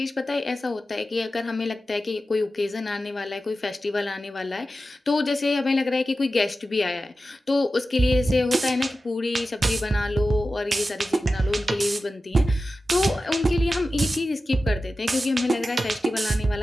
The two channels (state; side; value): normal; both; correlation 0.93